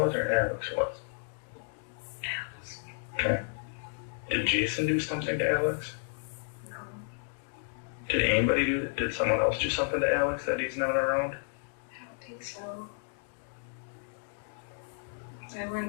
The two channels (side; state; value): right; silent; digital silence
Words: or Alex was? Alex. Okay. Did Jason do something to Alex? No. Did someone else do something to Alex that he's not around? think so. I